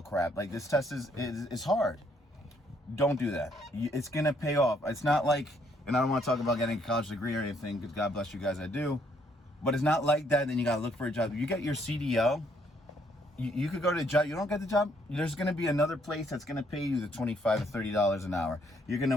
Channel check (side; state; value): both; normal; correlation 0.69